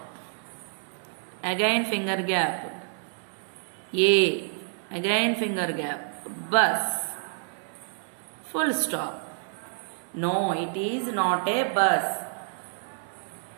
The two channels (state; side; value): silent; left; 59 dB below the other